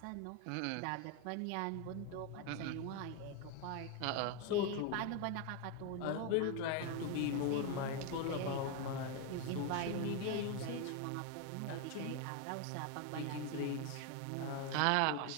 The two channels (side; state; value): both; different; correlation 0.01